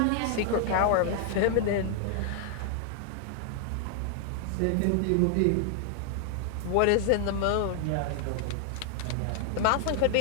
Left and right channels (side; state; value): both; different; correlation 0.00